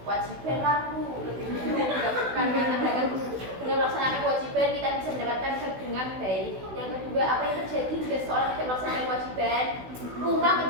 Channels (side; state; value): left; late; 16 ms